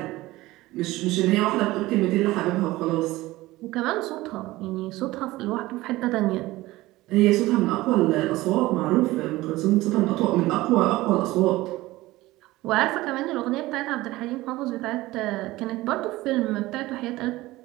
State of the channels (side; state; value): left; quieter; 18.4 dB